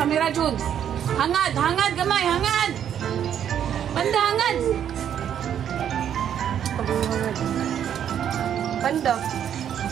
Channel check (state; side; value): quieter; left; 9.4 dB